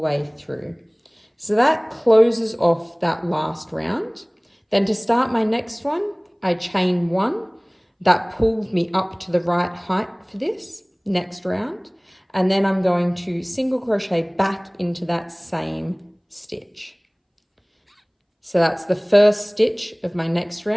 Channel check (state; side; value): identical; both; correlation 1.00